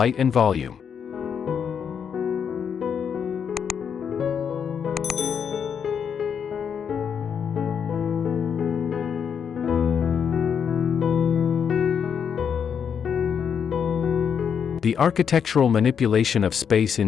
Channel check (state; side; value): quieter; right; 7.4 dB